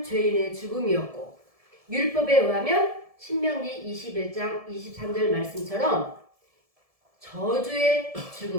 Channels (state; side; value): late; left; 1.7 ms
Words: 죄인의 죽음이었고, 율법에 의하면 신명기 21장 23절 말씀처럼 저주의